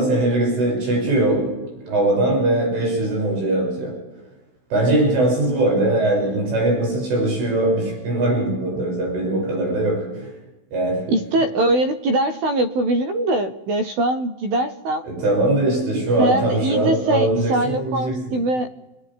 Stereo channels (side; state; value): left; late; 16 ms